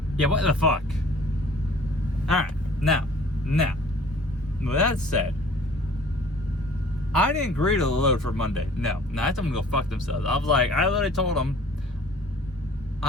Yeah, what the fuck? Alright, now, with that said, I didn't agree to the load for Monday. No, I told them to go fuck themselves. I was like, I literally told them,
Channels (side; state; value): both; normal; correlation 0.51